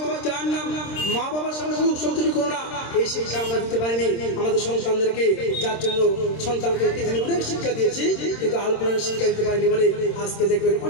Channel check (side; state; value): right; late; 26 ms